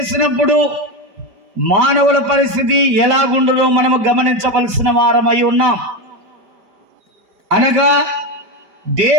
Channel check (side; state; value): left; late; 5.0 ms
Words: మానవుల పరిస్థితి ఎలాగుండునో మనము గమనించవలసిన వారమై ఉన్నాం. అనగా